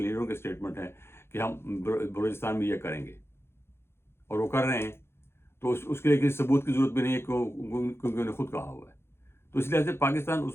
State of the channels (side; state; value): right; late; 0.12 ms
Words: لیڈروں کے اسٹیٹمنٹ ہیں کہ ہم بلوچستان میں یہ کریں گے، اور وہ کر رہے ہیں. تو اس کے لیے کسی ثبوت کی ضرورت بھی نہیں ہے کیونکہ انہوں نے خود کہا ہوا ہے. تو اس لحاظ سے پاکستان